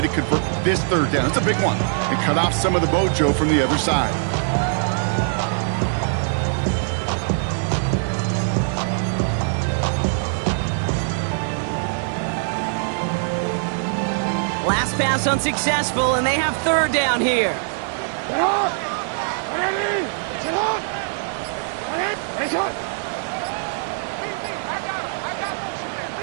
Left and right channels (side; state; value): left; silent; digital silence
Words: to convert this 3rd down. It's a big one. And cut off some of the mojo from the other side. Last pass unsuccessful, and they have 3rd down here.